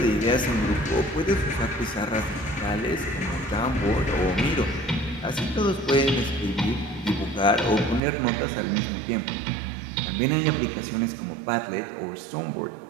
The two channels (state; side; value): drops out; left; at 8.0 s